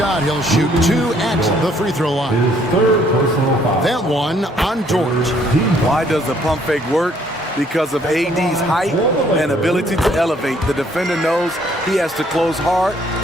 He'll shoot 2 at the free throw line. His third personal foul. That one on George. Why does the pump fake work? Because of AD's height and ability to elevate. The defender knows he has to close hard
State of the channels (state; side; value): normal; both; correlation 0.64